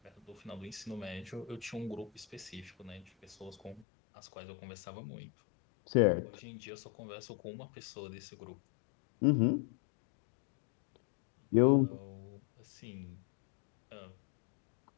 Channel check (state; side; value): drops out; right; at 3.9 s